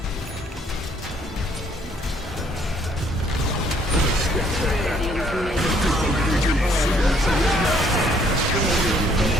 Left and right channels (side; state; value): both; normal; correlation 0.65